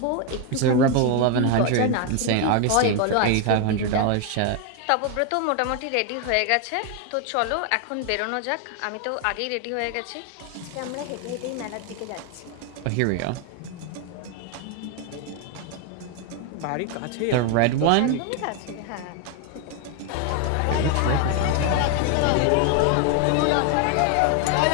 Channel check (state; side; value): different; both; correlation 0.01